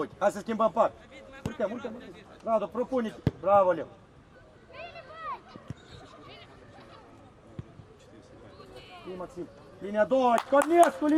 hai să schimbăm part. Urcă. Radu, propune-te. Bravo, Leu. Bine, Maxim. Linia 2, Cornescu,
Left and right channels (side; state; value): both; identical; correlation 1.00